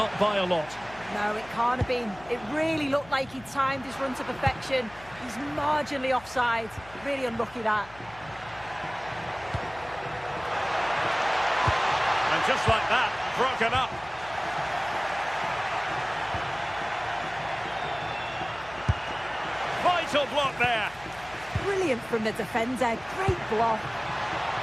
by a lot. No, it can't have been. It really looked like he timed his run to perfection. He's marginally offside. Really unlucky, that. And just like that, broken up. Vital block there. Brilliant from the defender. Great block.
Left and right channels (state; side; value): noise; left; hum, 21 dB below the sound